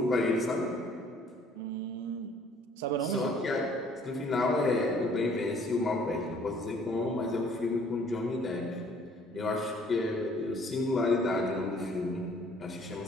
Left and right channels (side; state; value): both; normal; correlation 0.59